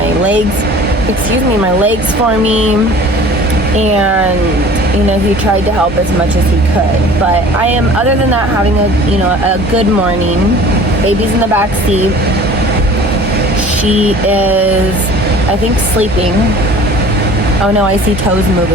legs for me, and he tried to help as much as he could. But I am, other than that, having a good morning. Baby's in the back seat. She is, I think, sleeping. Oh no, I see toes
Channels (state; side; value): normal; both; correlation 0.45